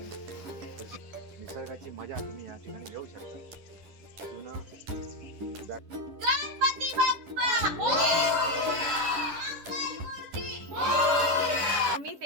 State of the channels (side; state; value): left; late; 10 ms